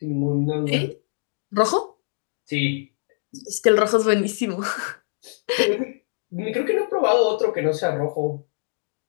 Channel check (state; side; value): silent; right; digital silence